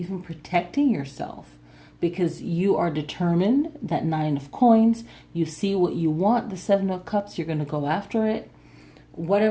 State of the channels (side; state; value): both; identical; correlation 1.00